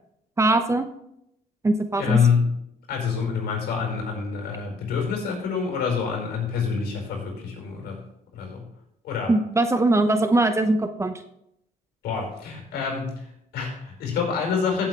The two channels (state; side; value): normal; both; correlation 0.64